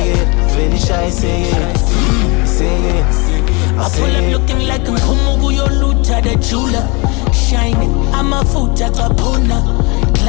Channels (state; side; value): quieter; right; 28.7 dB